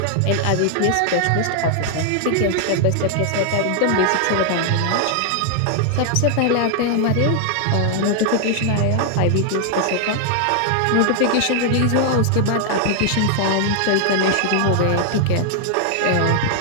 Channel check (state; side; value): different; both; correlation 0.00